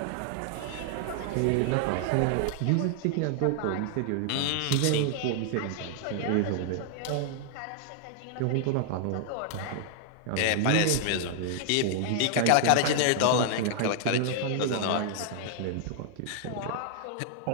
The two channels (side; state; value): both; different; correlation 0.00